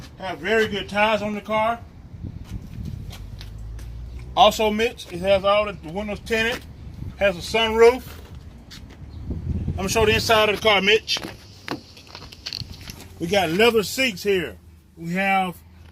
has very good tires on the car. Also Mitch, it has all the windows tinted, has a sunroof. I'm going to show the inside of the car, Mitch. We got leather seats here. We have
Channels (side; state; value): both; identical; correlation 1.00